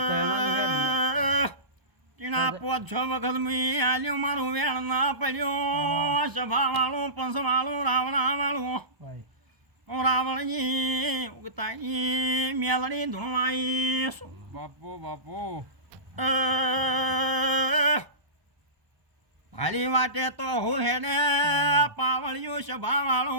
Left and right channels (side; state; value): left; late; 1.0 ms